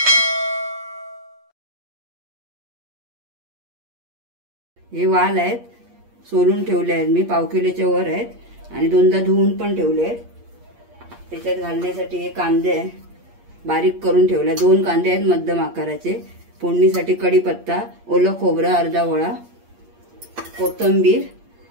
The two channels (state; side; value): late; left; 8.5 ms